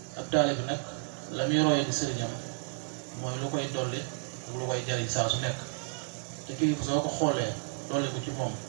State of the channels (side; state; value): left; silent; digital silence